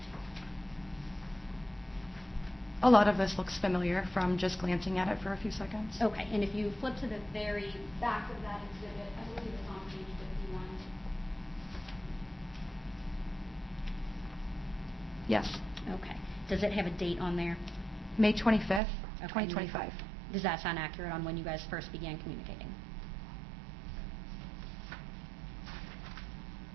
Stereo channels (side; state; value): left; drops out; at 18.8 s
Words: A lot of this looks familiar from just glancing at it for a few seconds. Okay, and if you flip to the very back of that exhibit, I believe it's on page 51. Yes. Okay. Does it have a date on there? May 25th, Okay. 2025. Does that sound accurate on when you guys first began communicating?